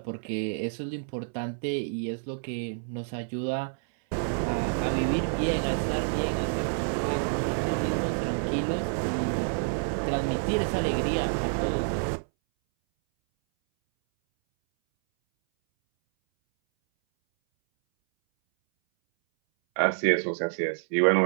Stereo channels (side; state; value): left; silent; 59 dB below the other